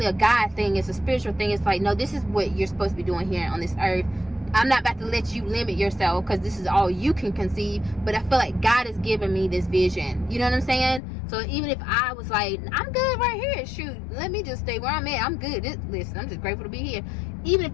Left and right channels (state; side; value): drops out; right; at 11.0 s